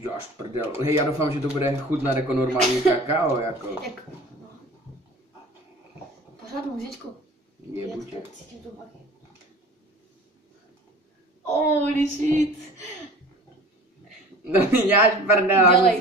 prdel. Hej, já doufám, že to bude chutnat jako normální kakao, jako. No. Pořádnou říčku. Je buďe. Cítím to baví. Holy shit. No mi děláš prdel.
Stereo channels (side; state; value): both; normal; correlation 0.42